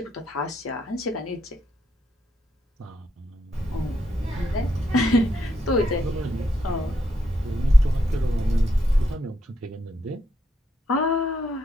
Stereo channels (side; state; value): both; normal; correlation 0.78